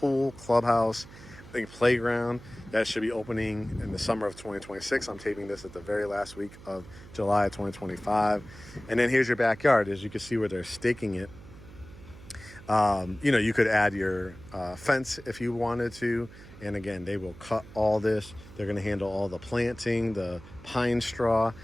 clubhouse, I think playground that should be opening in the summer of 2026. I'm taping this at the very last week of July of 2025. And then here's your backyard. As you can see where they're staking it. You know, you could add your fence if you wanted to. And again, they will cut all this. They're going to handle all the planting, the pine straw.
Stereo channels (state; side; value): noise; right; hum, 18 dB below the sound